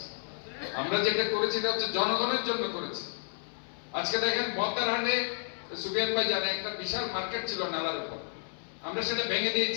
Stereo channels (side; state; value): right; silent; digital silence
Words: আমরা যেটা করেছি এটা হচ্ছে জনগণের জন্য করেছি। আজকে দেখেন বতারহাটে সুবিয়ান ভাই জানে একটা বিশাল মার্কেট ছিল নালার উপর, আমরা সেটা ভেঙে